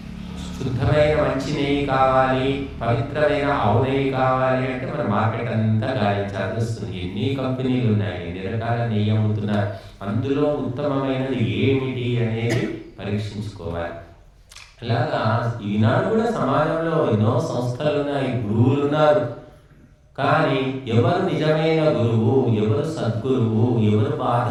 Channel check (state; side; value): identical; both; correlation 1.00